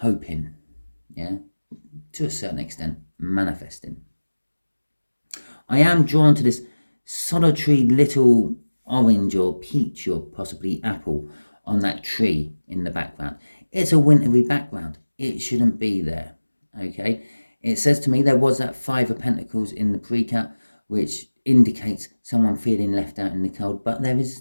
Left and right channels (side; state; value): both; inverted; correlation -1.00